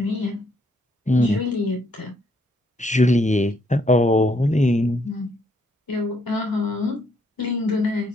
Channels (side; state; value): both; normal; correlation 0.71